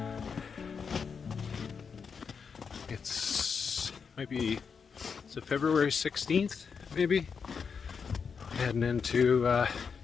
It's February 16th, maybe? Heading into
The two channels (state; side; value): quieter; right; 6.0 dB